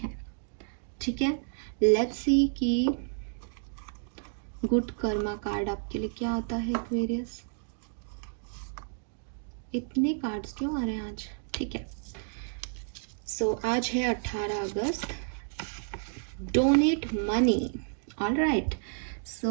ठीक है? लेट्स सी कि गुड कर्मा कार्ड आपके लिए क्या आता है एक्वेरियस। इतने कार्ड्स क्यों आ रहे हैं आज? ठीक है, सो आज है 18 अगस्त। Donate money. ऑलराइट,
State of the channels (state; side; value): silent; left; digital silence